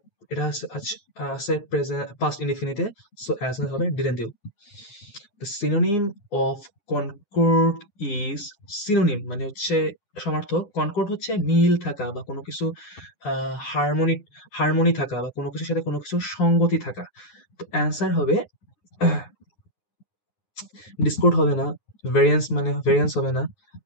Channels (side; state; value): right; late; 9.6 ms